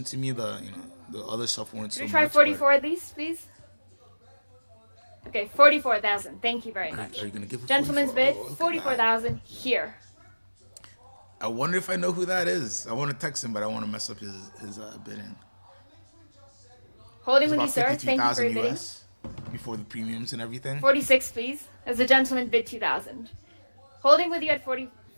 to me. The other stuff weren't so Should we try much. 44 at least, please? Okay, 44,000. Thank you very much. Are you gonna give a Gentleman's 44? bid, Oh, look at that. 44,000 here. I wonder if I know who that is. I want to text him, but I want to mess up his bidding. Holding It's with you, about sir. Thank you for 53,000 your bidding. US before the premiums and everything. 46, please. As the gentleman bid 2,000. Holding with you at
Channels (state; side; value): inverted; both; correlation -1.00